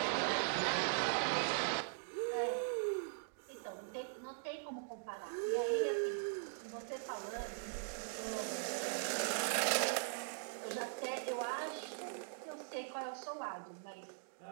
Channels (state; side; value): silent; left; digital silence